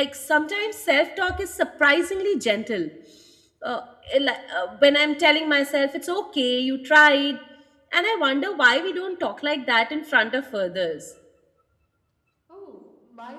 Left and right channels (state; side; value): identical; both; correlation 1.00